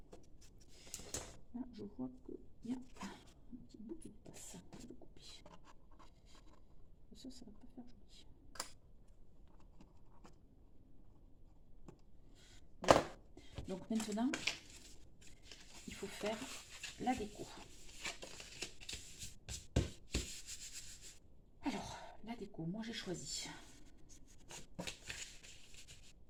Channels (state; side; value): identical; both; correlation 1.00